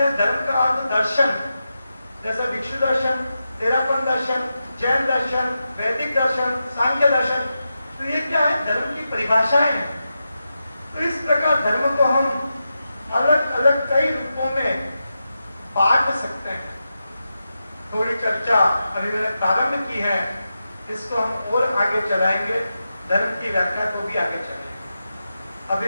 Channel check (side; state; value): both; inverted; correlation -0.89